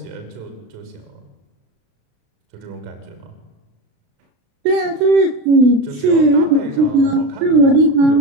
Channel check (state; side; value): late; left; 36 ms